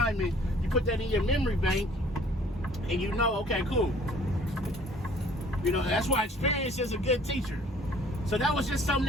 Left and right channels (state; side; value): normal; both; correlation 0.55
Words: and you put that in your memory bank, and okay, cool. That's why experience is a good teacher. So that was just something